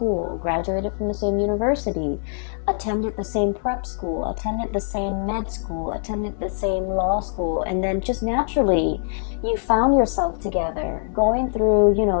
graduated from the same university, attended the same prep school, attended the same med school, attended the same law school, and then just naturally you found yourself together, going through, you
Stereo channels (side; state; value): right; silent; digital silence